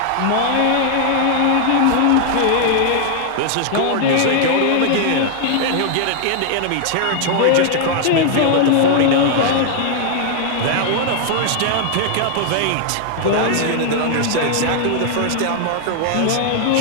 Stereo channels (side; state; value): both; different; correlation 0.00